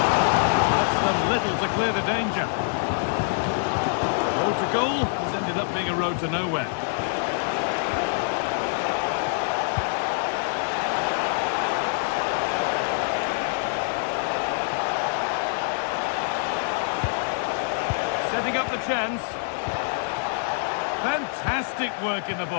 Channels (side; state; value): right; silent; 61 dB below the other